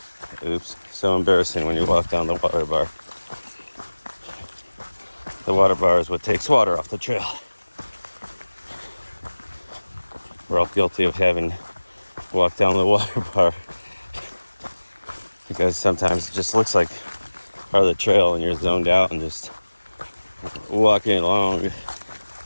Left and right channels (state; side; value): inverted; both; correlation -1.00